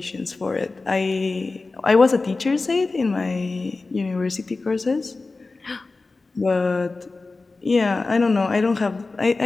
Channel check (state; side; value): quieter; right; 3.6 dB